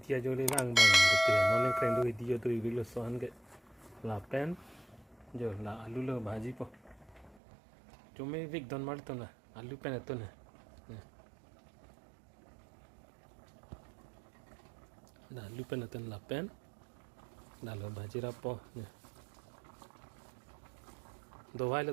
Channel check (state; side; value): drops out; left; at 7.4 s